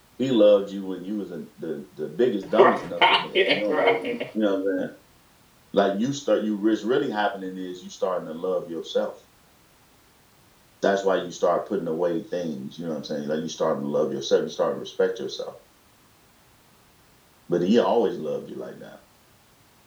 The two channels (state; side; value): identical; both; correlation 1.00